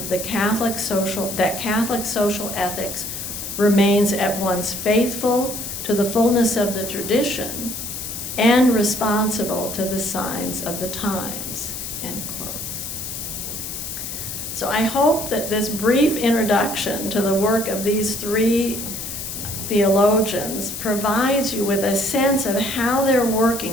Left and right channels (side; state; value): left; noise; hiss, 7 dB below the sound